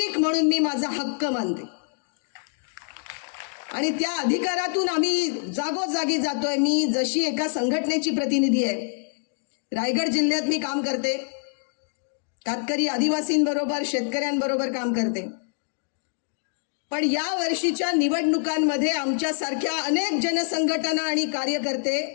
म्हणून मी माझा हक्क मानते आणि त्या अधिकारातून आम्ही जागोजागी जातोय. मी जशी एका संघटनेची प्रतिनिधी आहे, रायगड जिल्ह्यात मी काम करते, कातकरी आदिवासींबरोबर शेतकऱ्यांबरोबर काम करते. पण या वर्षीच्या निवडणुकांमध्ये आमच्यासारख्या अनेक जनसंघटना आणि कार्यकर्ते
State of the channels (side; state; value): right; silent; 61 dB below the other